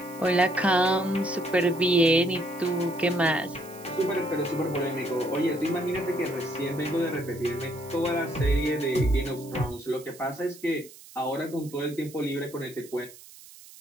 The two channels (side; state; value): right; noise; hiss, 20 dB below the sound